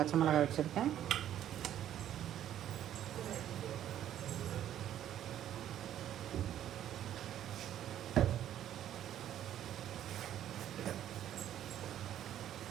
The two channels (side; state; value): left; quieter; 11.2 dB